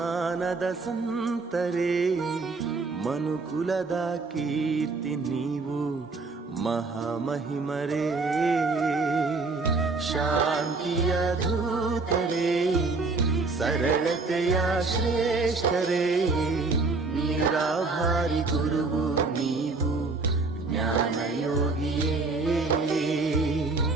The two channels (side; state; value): left; quieter; 3.8 dB